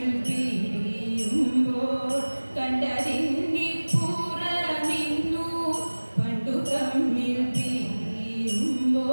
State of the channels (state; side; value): inverted; both; correlation -1.00